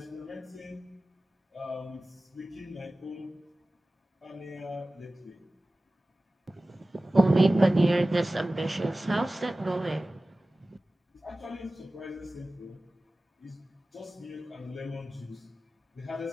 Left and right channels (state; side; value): normal; both; correlation 0.96